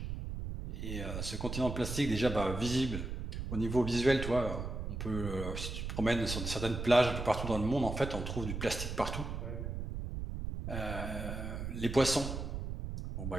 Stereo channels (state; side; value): noise; right; rumble, 5 dB below the sound